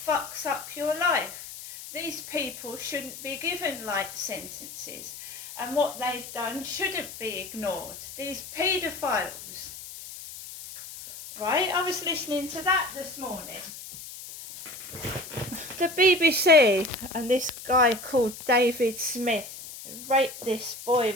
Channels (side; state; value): left; noise; hiss, 12 dB below the sound